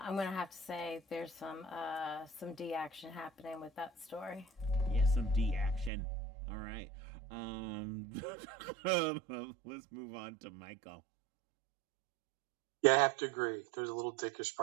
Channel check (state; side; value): drops out; left; at 5.9 s